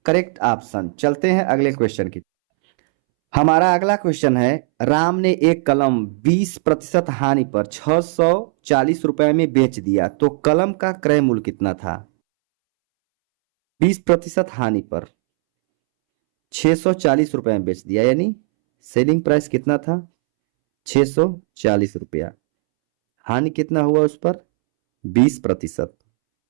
करेक्ट ऑप्शन। चलते हैं अगले क्वेश्चन की। हमारा अगला क्वेश्चन है, राम ने एक कलम 20% हानि पर 640 रुपए में बेच दिया, तो कलम का क्रय मूल्य कितना था। 20% हानि पर 640 रुपए में बेच दिया, यानी सेलिंग प्राइस कितना था 640 रुपया, हानि कितना हुआ उस पर 20%,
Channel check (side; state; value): left; silent; 67 dB below the other